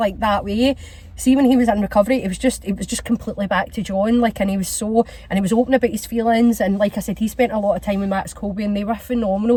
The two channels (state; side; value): identical; both; correlation 1.00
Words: that way. See, when he was in recovery, it was just completely back to John, like, and he was open about his feelings, and like I said, he spent a lot of time with Max Colby, and they were